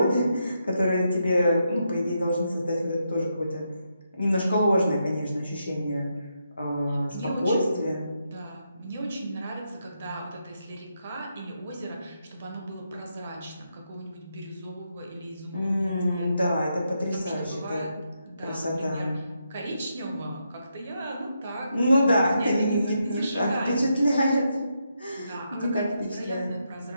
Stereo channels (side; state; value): both; inverted; correlation -0.82